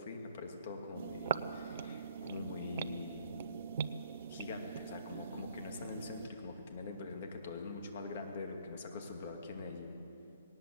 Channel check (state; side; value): inverted; both; correlation -0.60